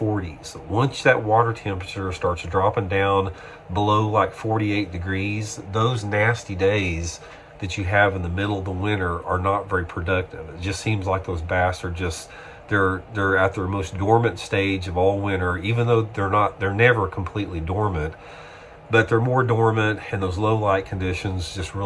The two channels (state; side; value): identical; both; correlation 1.00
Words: Once that water temperature starts dropping down below like 48 degrees, those nasty days that you have in the middle of the winter are not very productive. It just seems like those bass are just, they're at their most dormant stage of all winter, even though they're never completely dormant, but they're more dormant, and those low light conditions just